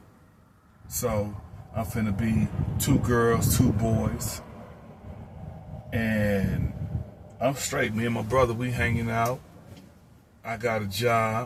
so I'm finna be 2 girls, 2 boys, and I'm straight. Me and my brother, we hanging out. I got a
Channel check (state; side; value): identical; both; correlation 1.00